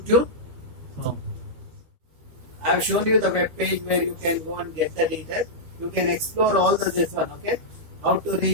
So I have shown you the web page where you can go and get the details. You can explore all this one. Okay, how to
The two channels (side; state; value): left; late; 13 ms